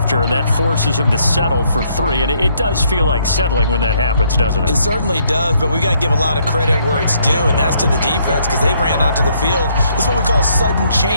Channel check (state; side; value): inverted; both; correlation -0.70